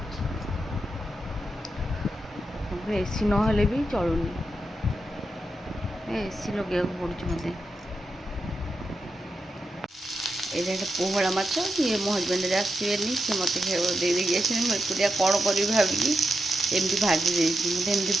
एसी नहेले भी चलुनी एसी लगे पड़ुच मत। ये पोहड़ा माछ ये मो हजबैंड आसवे सी मत दे मुझे कौन करी भाविकी एमती भाजी देती मत एमती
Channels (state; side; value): normal; both; correlation 0.86